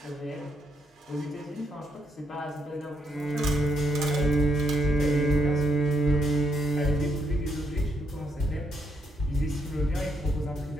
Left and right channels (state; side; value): normal; both; correlation 0.76